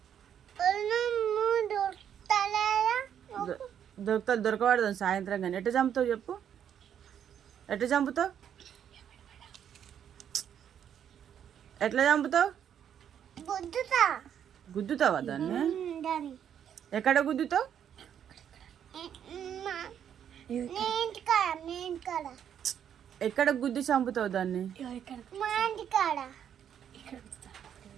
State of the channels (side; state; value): left; quieter; 9.1 dB